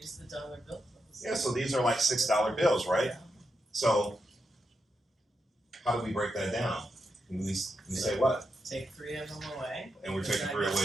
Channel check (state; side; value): normal; both; correlation 0.85